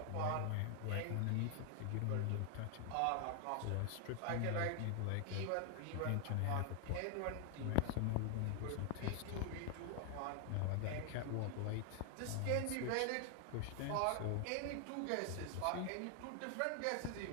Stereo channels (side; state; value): both; different; correlation 0.00